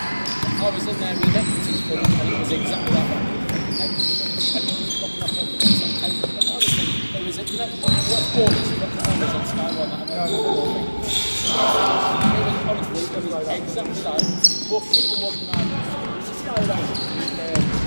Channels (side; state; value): both; inverted; correlation -1.00